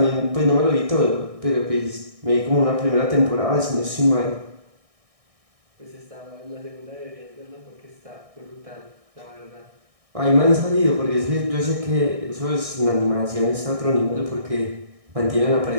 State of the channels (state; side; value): late; left; 1.6 ms